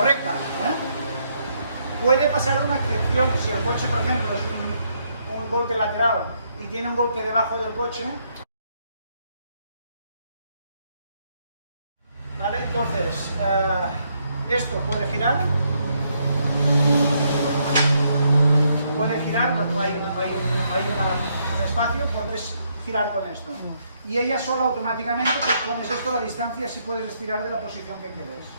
¿eh? Puede pasar una excepción si el coche, por ejemplo, es un golpe lateral y tiene un golpe debajo del coche. ¿Vale? Entonces, esto puede girar, hay un espacio, puedes girar con esto. Y ella sola automáticamente, pues pones esto a la distancia, así puedes estirar de la posición que quieres.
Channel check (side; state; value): both; inverted; correlation -0.74